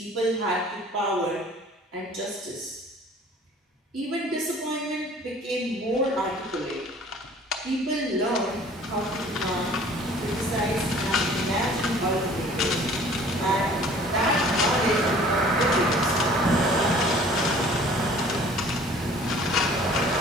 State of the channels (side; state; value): both; normal; correlation 0.50